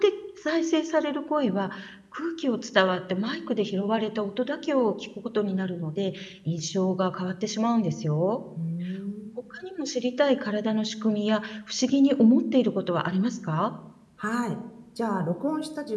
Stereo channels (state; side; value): identical; both; correlation 1.00